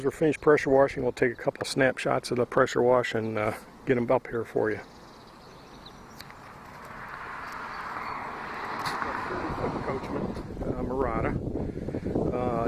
we're finished pressure washing, we'll take a couple of snapshots of the pressure wash and get them up here for you. Coachman Murata,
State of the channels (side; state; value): both; identical; correlation 1.00